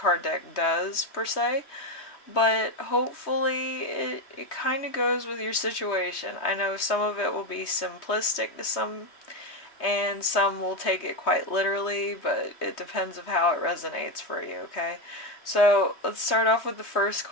deck does per se, but hopefully it kind of goes with your situation. I know some of it will be simplistic to some, and some will take it quite literally, but it depends of how it resonates for you, okay? So let's start off with the first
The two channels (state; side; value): late; right; 3.2 ms